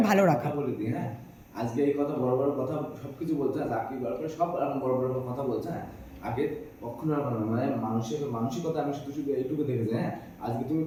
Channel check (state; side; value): identical; both; correlation 1.00